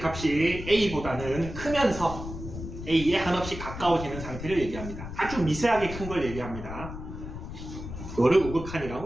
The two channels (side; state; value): left; noise; rumble, 9 dB below the sound